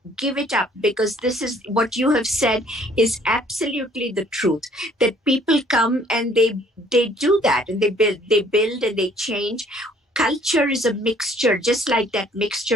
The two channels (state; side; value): normal; both; correlation 0.59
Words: Give it up, because this is what you have said is absolutely the truth, that people come and they do that, and they build and they change. Culture is a mixture, just like that